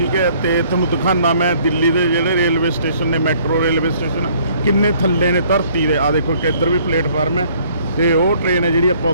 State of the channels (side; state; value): both; inverted; correlation -0.60